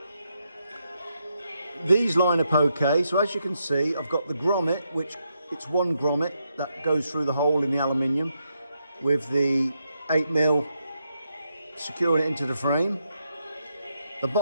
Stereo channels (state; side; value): inverted; both; correlation -0.81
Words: These line up okay, so as you can see I've got the grommet, which it's one grommet that goes through the hole in the aluminium with the 8mm securing it into the frame. The